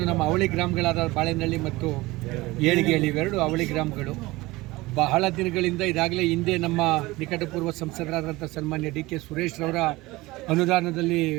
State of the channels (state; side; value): quieter; left; 20.4 dB